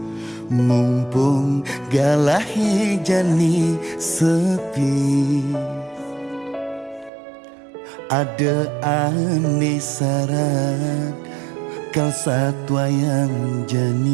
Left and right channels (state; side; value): drops out; left; at 7.1 s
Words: mumpung galahe jani sepi. Ada ane syarat kau satwa yang